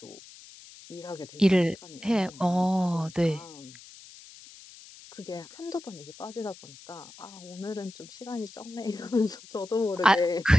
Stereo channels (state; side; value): noise; left; hiss, 19 dB below the sound